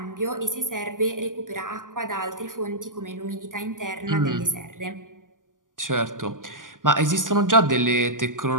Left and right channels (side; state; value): left; late; 0.88 ms